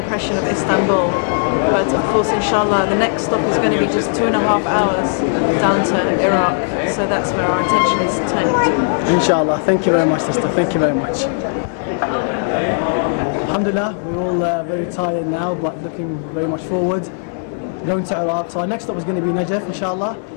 of Istanbul. But of course, inshallah, the next stop is going to be just 2.5 hours down to Iraq, so that's where our attention is turning to. Inshallah. Thank you very much, sister. Thank you very much. Alhamdulillah, we're all very tired now, but looking very much forward. Going to Iraq. So our next stop is going to be Najaf, inshallah.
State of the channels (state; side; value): silent; right; 60 dB below the other